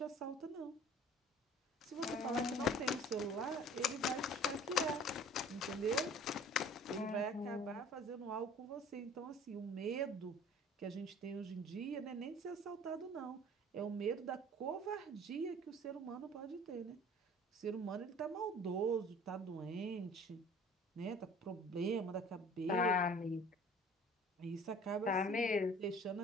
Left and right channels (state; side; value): normal; both; correlation 0.48